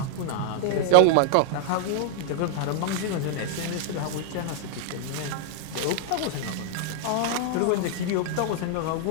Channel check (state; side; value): different; both; correlation -0.01